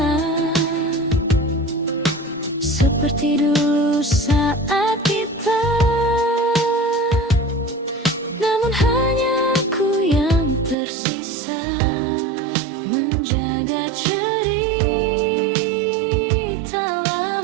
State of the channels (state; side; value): drops out; left; at 10.8 s